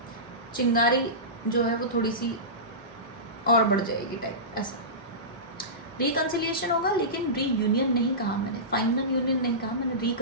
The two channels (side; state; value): both; normal; correlation -0.20